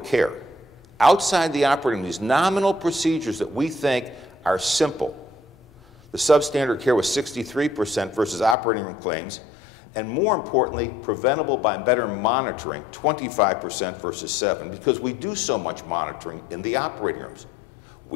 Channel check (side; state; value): right; drops out; at 8.6 s